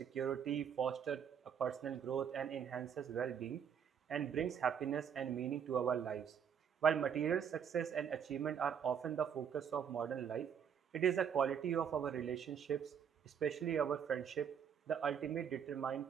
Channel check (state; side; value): quieter; left; 7.9 dB